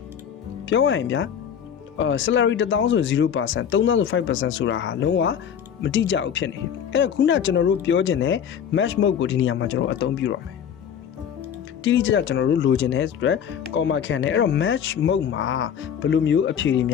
ပြောရရင်ဗျာsalary 1000ဆို 0% 3000ဆို 5% ဆိုတာဟာလုံးဝမတိကျဘူးဖြစ်နေတယ်အဲ့တော့ခုနကျွန်တော်တို့ပြောချင်တဲ့ match mode ကိုဒီနေရာမှာကျွန်တော်အသုံးပြုရမယ်တိတိကျကျကျွန်တော်တို့လိုချင်တဲ့အတွက် comma ခံတယ်အဲ့တော့ match mode မှာဘယ်လိုမျိုးအဖြေတွေမ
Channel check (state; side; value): quieter; right; 8.3 dB